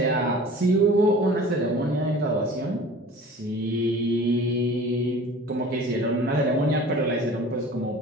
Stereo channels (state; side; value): normal; both; correlation 0.43